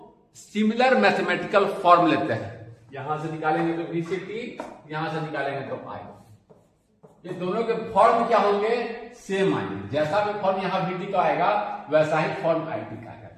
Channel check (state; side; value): identical; both; correlation 1.00